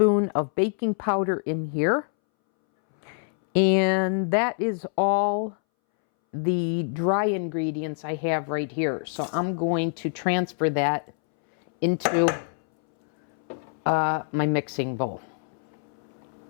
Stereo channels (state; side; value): silent; right; 61 dB below the other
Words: of baking powder in here. And that is all the dry ingredients I have right here. So I'm going to transfer that into my mixing bowl.